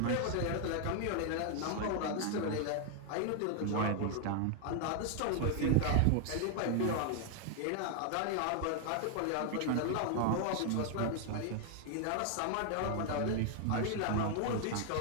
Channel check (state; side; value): different; both; correlation 0.00